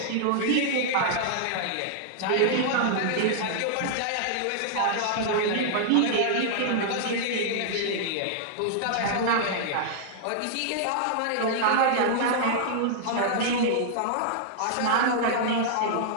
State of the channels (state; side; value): different; both; correlation -0.01